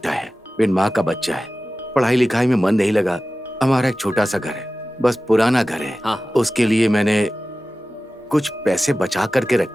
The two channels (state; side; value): normal; both; correlation 0.95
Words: है, बिन माँ का बच्चा है। पढ़ाई लिखाई में मन नहीं लगा। हमारा एक छोटा सा घर है, बस पुराना घर है। हाँ। उसके लिए मैंने कुछ पैसे बचा करके